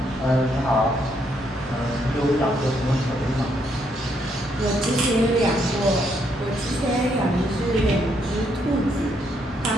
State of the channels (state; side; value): normal; both; correlation 0.74